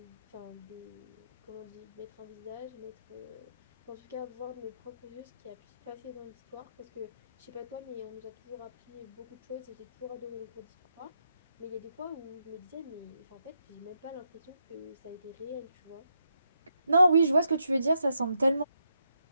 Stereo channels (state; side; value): inverted; both; correlation -0.81